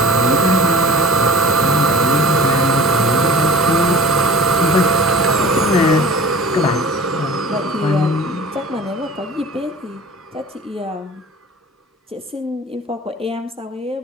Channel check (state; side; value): normal; both; correlation 0.43